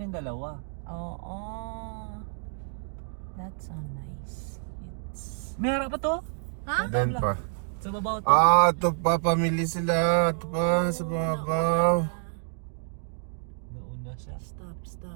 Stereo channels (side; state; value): left; silent; digital silence